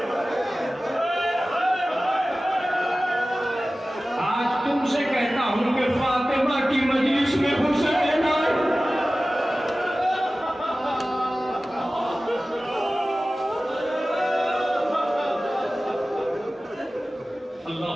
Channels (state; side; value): normal; both; correlation 0.96